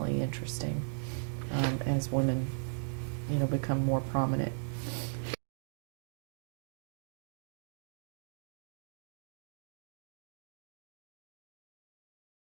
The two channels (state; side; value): silent; left; digital silence